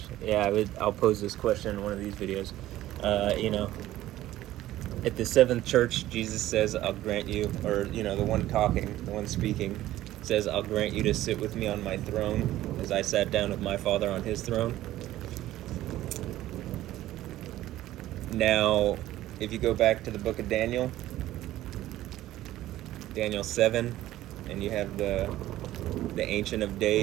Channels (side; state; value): left; quieter; 14.6 dB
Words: I'll pose this question in one of these videos. At the Seventh Church, Jesus says, "I'll grant you," or the one talking, the one speaking, says, "I'll grant you to sit with me on my throne, as I sat down with my Father on his throne." Now, if you go back to the book of Daniel 7, and you have the Ancient of